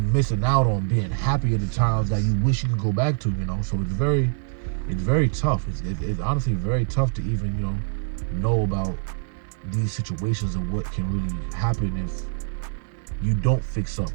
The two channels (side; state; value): left; silent; digital silence